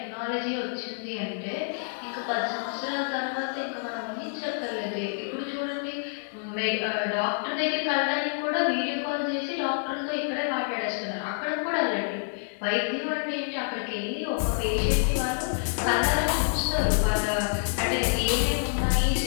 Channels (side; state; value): right; silent; digital silence